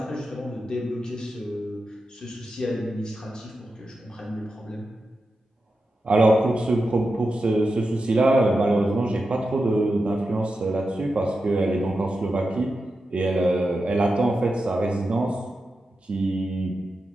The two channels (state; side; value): normal; both; correlation 0.90